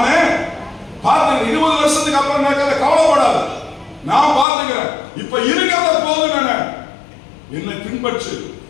பார்த்துக்கிறேன். 20 வருஷத்துக்கு அப்புறம் நடக்கிறத கவலைப்படாத, நான் பார்த்துக்கிறேன். இப்ப இருக்கிறத போதும். என்னை பின்பற்று,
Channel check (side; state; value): right; drops out; at 4.5 s